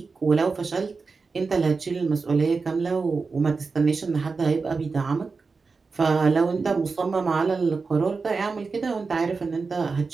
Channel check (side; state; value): left; quieter; 4.5 dB